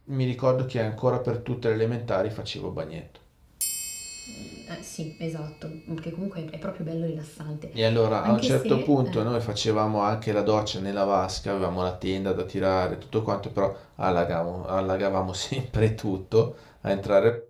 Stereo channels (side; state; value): both; identical; correlation 1.00